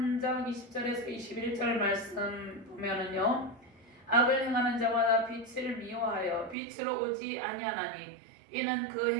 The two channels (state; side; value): drops out; left; at 6.6 s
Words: 20절에서 21절 말씀 보면은요, 악을 행하는 자마다 빛을 미워하여 빛으로 오지 아니하나니 이는 그